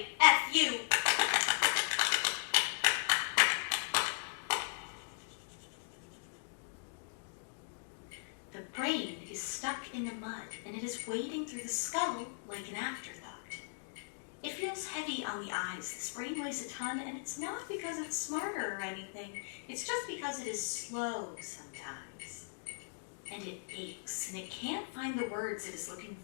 The brain is stuck in the mud, and it is wading through the skull like an afterthought. It feels heavy on the eyes. This brain weighs a ton, and it's not because it's smarter or anything. It's just because it is slow sometimes. And it aches, and it can't find the words it is looking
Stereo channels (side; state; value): right; silent; digital silence